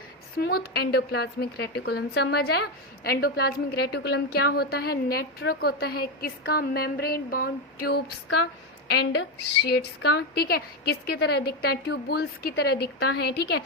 smooth endoplasmic reticulum. समझ आया। एंडोप्लाज्मिक रेटिकुलम क्या होता है, नेटवर्क होता है, किसका, मेम्ब्रेन बाउंड ट्यूब्स का एंड शीट्स का। ठीक है, किसकी तरह दिखता है, ट्यूबुल्स की तरह दिखता है। ठीक है,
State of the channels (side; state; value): both; normal; correlation 0.10